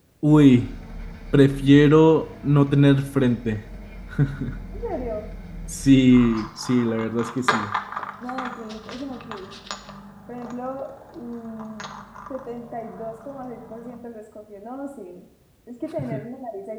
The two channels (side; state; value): both; identical; correlation 1.00